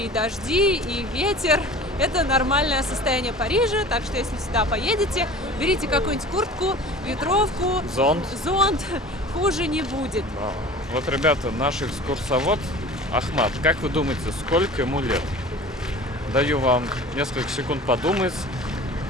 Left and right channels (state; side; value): normal; both; correlation 0.41